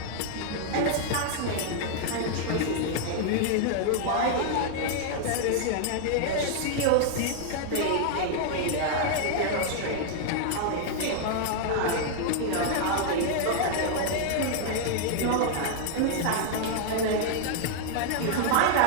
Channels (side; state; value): both; different; correlation 0.00